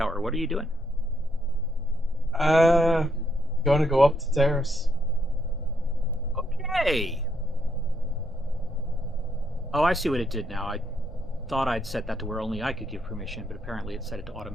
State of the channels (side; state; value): both; normal; correlation 0.74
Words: What are you doing? Going to go up to T.R.A.S.H. Okay. Oh, I see what it did now. I thought I'd set that to where only I could give permission, but apparently it set it to